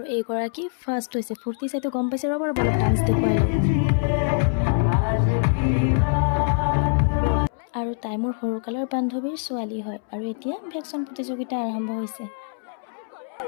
এইগৰাকী ফাৰ্ষ্ট হৈছে। ফূৰ্তি চাইতো গম পাইছে, ৰ'ব অলপ ডান্স দেখুৱাই লওঁ। আৰু তাই মোৰ সৰুকালৰ বান্ধৱীৰ ছোৱালী হয় আৰু এতিয়া ভেকচন প্ৰতিযোগিতা আৰম্ভ হৈছে।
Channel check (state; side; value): silent; right; 63 dB below the other